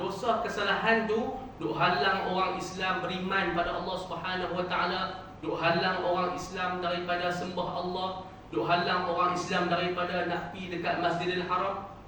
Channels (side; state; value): both; identical; correlation 1.00